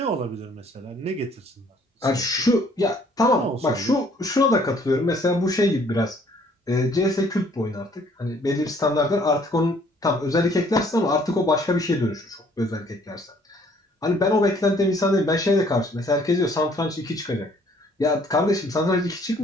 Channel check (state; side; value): normal; both; correlation 0.61